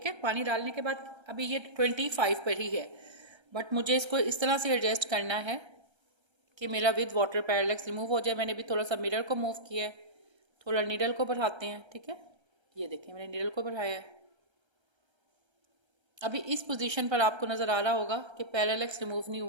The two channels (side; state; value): left; late; 1.3 ms